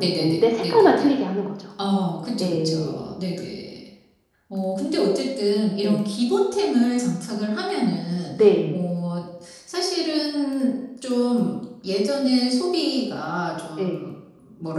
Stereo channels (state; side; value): identical; both; correlation 1.00